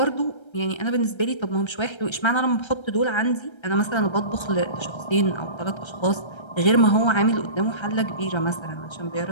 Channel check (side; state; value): right; late; 1.3 ms